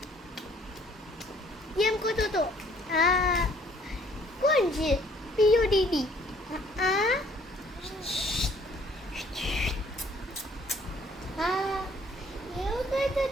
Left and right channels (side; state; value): both; normal; correlation 0.60